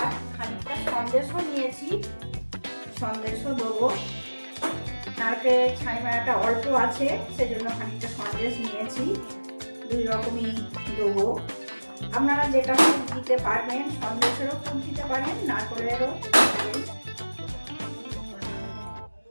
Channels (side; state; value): both; inverted; correlation -1.00